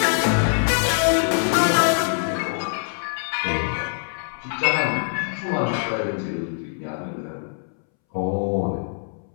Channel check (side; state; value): right; silent; 63 dB below the other